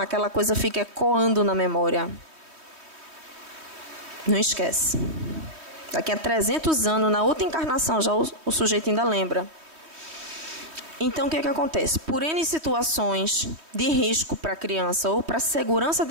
coisa fica ecoando na memória. Não esquece. Daqui a 300 anos, na outra encarnação, já o sujeito ainda lembra. Então, o que acontece? Por N situações de risco para a criança ou para a segurança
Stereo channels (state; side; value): late; left; 3.2 ms